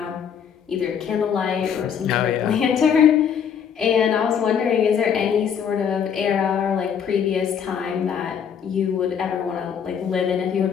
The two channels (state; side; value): quieter; right; 7.7 dB